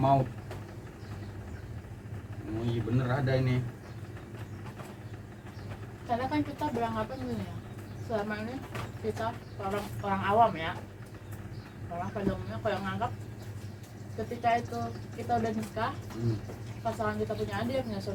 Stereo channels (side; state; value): both; identical; correlation 1.00